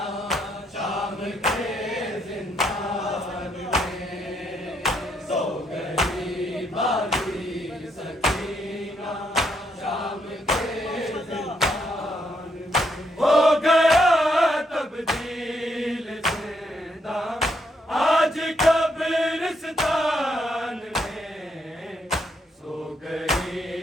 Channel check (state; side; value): normal; both; correlation 0.75